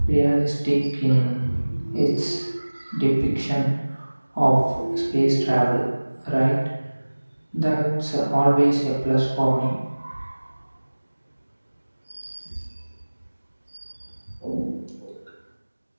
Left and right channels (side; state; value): both; inverted; correlation -1.00